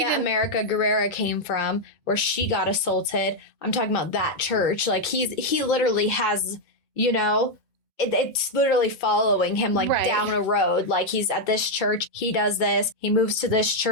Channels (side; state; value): both; normal; correlation 0.01